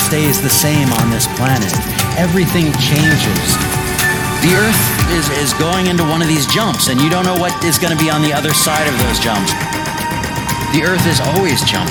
the same on this planet. Everything changes. The Earth is going into one of these jumps, and you don't know what is going to be on the other side of those jumps. The Earth is always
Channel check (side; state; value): both; identical; correlation 1.00